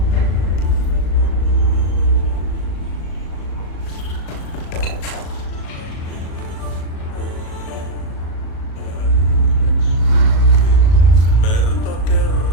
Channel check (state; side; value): late; right; 37 ms